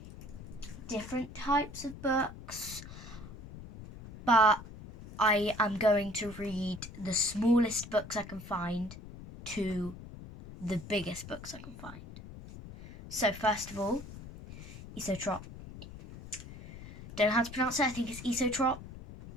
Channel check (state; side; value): noise; left; rumble, 14 dB below the sound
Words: different types of books, but I am going to read the smallest books I can find to the biggest books I can find. So first of all, Esio Trot. Don't know how to pronounce it. I think it's Esio Trot.